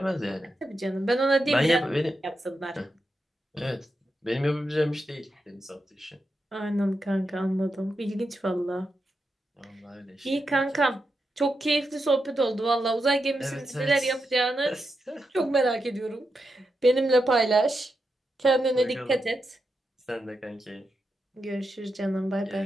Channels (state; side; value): normal; both; correlation 0.87